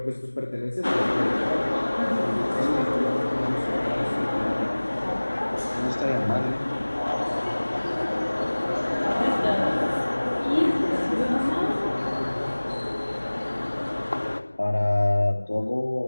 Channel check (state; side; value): inverted; both; correlation -1.00